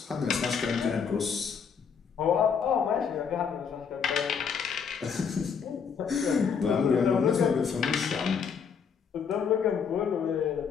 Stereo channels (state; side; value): quieter; right; 6.6 dB